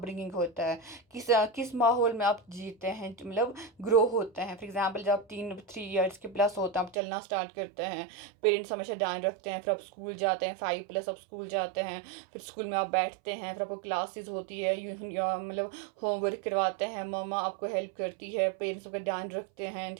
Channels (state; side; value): drops out; left; at 7.0 s